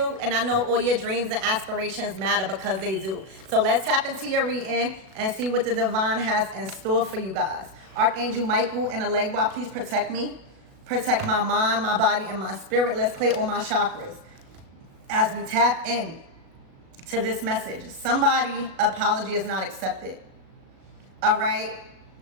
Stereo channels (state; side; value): late; left; 37 ms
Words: and I know all your dreams and aspirations matter because they do. So let's tap into your reading and see what the divine has in store for you guys. Archangel Michael and Allegra, please protect me. Protect my mind, my body, and my spirit. Let's clear all my chakras as we tap in to this message. Somebody apology is not accepted. All right.